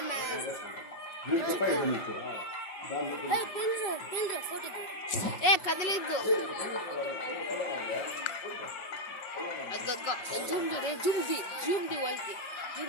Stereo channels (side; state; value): right; late; 5.3 ms